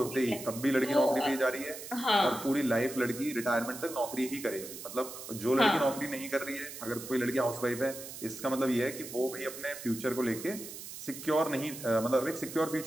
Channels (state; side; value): noise; right; hiss, 11 dB below the sound